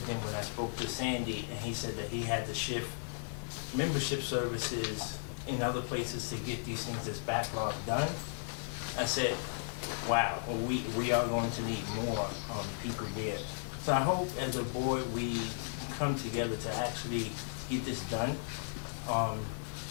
then when I spoke to Sandy, and he said that he had to shift membership services in other places to get these things that's backlog done, I said, wow, we are going to need more people there. So I hope as a board we come together to actually get this done.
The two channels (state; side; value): silent; right; digital silence